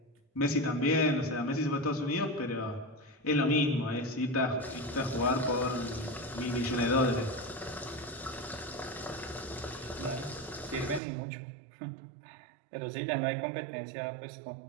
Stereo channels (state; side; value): drops out; left; at 11.0 s